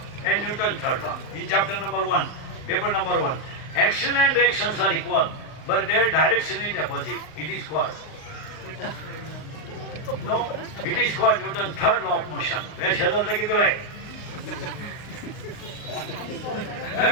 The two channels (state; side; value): late; right; 39 ms